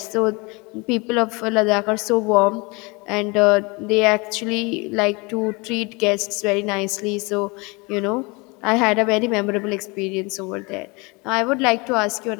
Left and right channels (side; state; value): right; quieter; 27.4 dB